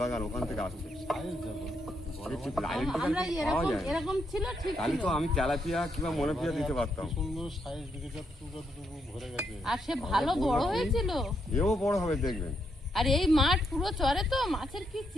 ওখান থেকে আসছে। সাইজ দেখো, বড় মাছ লাইন আমরা টিকিট পাওয়া এরকম যায় না। এরকম ছিল ঠিক তাহলে ছিল। তো আমি তেলাপিয়া কিংবা মনোপিয়া দিতে পারতাম। সুন্দর সাইজ দিকে যতটুকু ভরে গেছে। আর সে ভালো বড় হয়েছিল। এও বড় হবে দেখবেন। আর এই মাঠ পুরো চরে তো মাছের কি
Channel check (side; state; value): both; normal; correlation 0.78